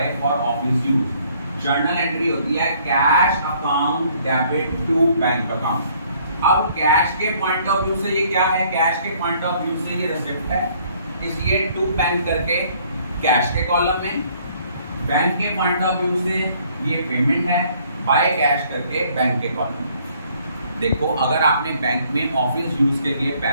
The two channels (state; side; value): inverted; both; correlation -0.62